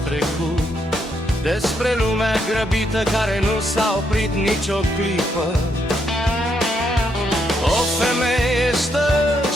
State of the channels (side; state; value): both; normal; correlation 0.77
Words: despre lumea grăbită care nu s-a oprit nicio clipă. O femeie stă